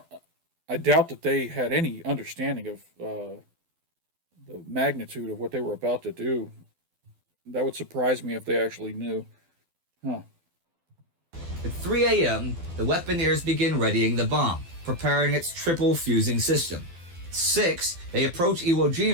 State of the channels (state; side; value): late; left; 12 ms